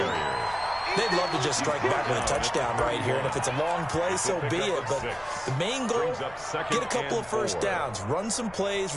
They'd love to just strike back with a touchdown right here, and if it's a long play, so be it. But the main goal, get a couple of first downs, run some plays,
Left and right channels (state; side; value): noise; left; rumble, 22 dB below the sound